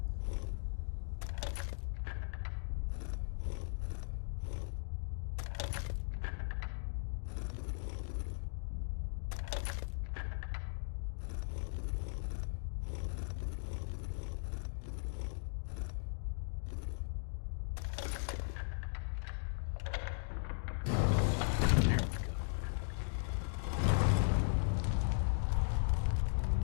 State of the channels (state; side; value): silent; right; digital silence